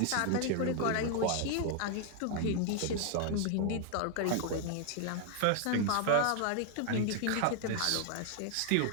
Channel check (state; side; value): different; both; correlation 0.00